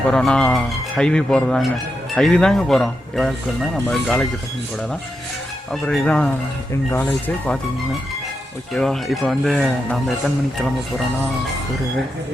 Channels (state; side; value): normal; both; correlation 0.86